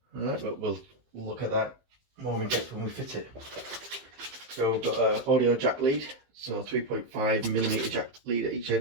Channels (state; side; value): late; left; 15 ms